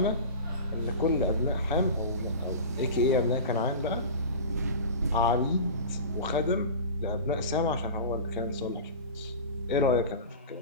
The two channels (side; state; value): both; inverted; correlation -0.32